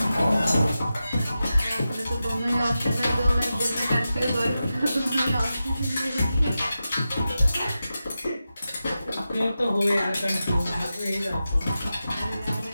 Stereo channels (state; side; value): inverted; both; correlation -0.92